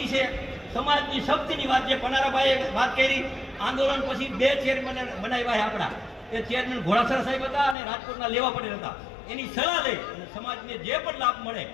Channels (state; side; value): drops out; right; at 7.8 s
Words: છે. સમાજની શક્તિની વાત જે પનારાભાઈએ વાત કરી, આંદોલન પછી 2 ચેરમેન બનાવ્યા આપણા. એ ચેરમેન ઘોડાસરા સાહેબ હતા અને રાજકોટના લેવા પટેલ હતા. એની સલાહ લઈ અને સમાજને જે પણ લાભ મળે